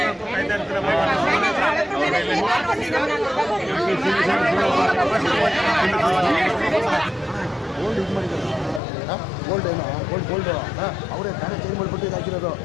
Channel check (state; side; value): drops out; right; at 8.8 s